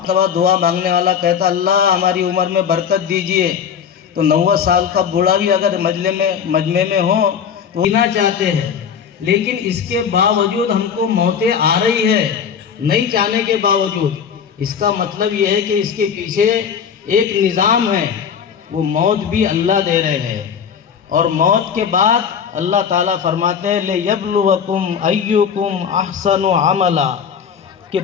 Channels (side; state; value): right; quieter; 7.4 dB